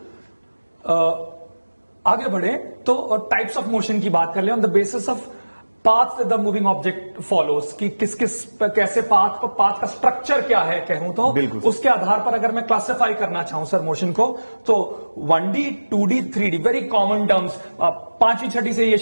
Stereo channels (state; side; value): inverted; both; correlation -1.00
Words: आगे बढ़े तो टाइप्स ऑफ मोशन की बात कर ले, on the basis of path the moving object follows, कि किस किस कैसे पाथ का स्ट्रक्चर क्या है कहूं तो, उसके आधार पर अगर मैं क्लासिफाई करना चाहूं सर मोशन को, तो 1D 2D 3D very common terms, पांचवी छठी से ये